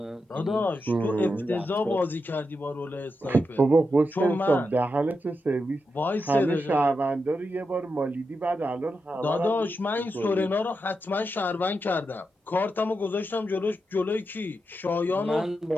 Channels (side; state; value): both; normal; correlation 0.87